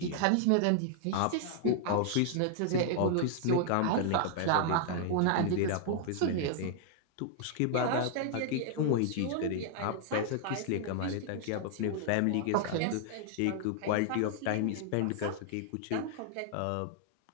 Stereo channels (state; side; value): different; both; correlation 0.00